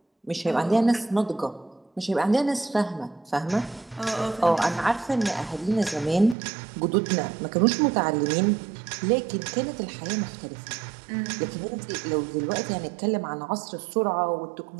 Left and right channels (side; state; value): left; drops out; at 6.4 s